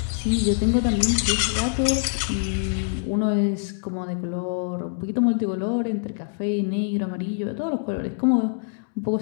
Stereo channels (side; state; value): right; silent; digital silence